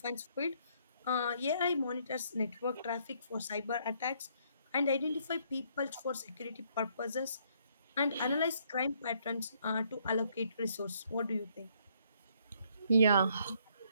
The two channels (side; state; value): both; inverted; correlation -0.68